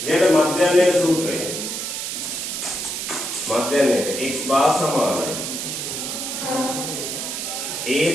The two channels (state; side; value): noise; right; hiss, 4 dB below the sound